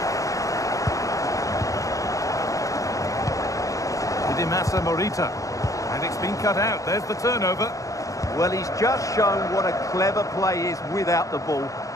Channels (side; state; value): right; late; 0.16 ms